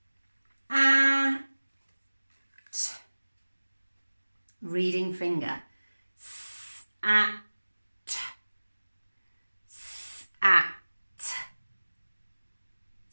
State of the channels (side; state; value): both; inverted; correlation -1.00